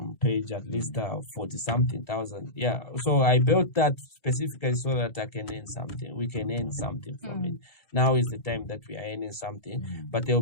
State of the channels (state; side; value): late; right; 2.7 ms